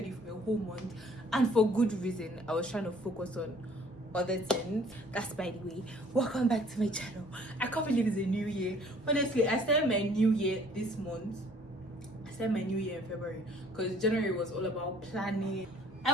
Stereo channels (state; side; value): normal; both; correlation 0.57